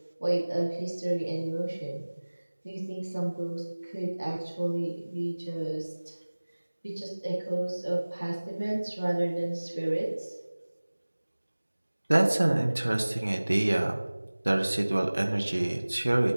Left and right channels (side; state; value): both; inverted; correlation -1.00